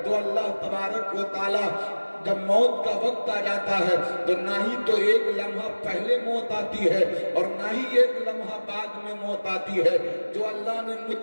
تو اللہ تبارک و تعالی جب موت کا وقت آ جاتا ہے تو نہ ہی تو ایک لمحہ پہلے موت آتی ہے اور نہ ہی ایک لمحہ بعد میں موت آتی ہے۔ جو اللہ نے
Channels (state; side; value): inverted; both; correlation -1.00